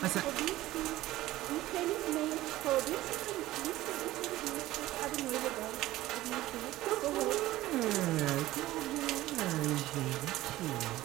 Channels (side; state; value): left; quieter; 16.2 dB